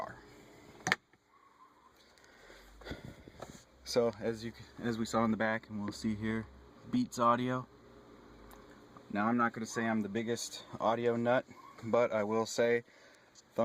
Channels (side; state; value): both; identical; correlation 1.00